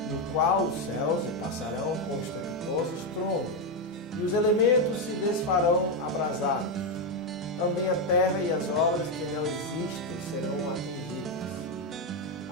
no qual os céus se passarão com estrepitoso estrondo, e os elementos se desfarão abrasados. Também a terra e as obras que nela existem serão atingidas.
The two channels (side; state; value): both; normal; correlation 0.06